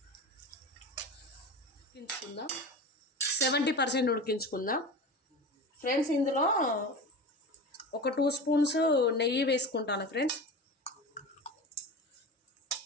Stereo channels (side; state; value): both; normal; correlation 0.30